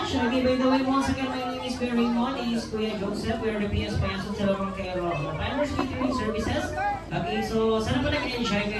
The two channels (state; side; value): identical; both; correlation 1.00